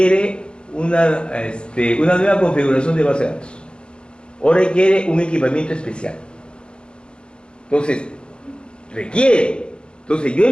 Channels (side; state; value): right; late; 0.054 ms